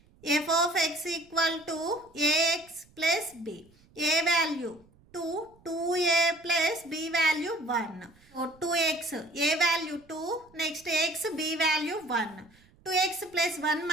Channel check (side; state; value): right; noise; rumble, 29 dB below the sound